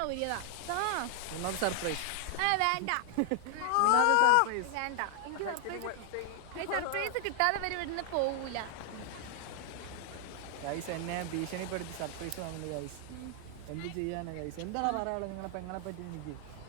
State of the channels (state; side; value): different; both; correlation 0.00